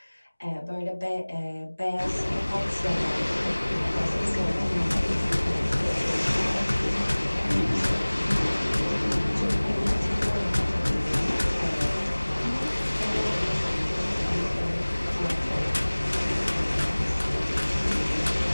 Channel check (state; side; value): inverted; both; correlation -1.00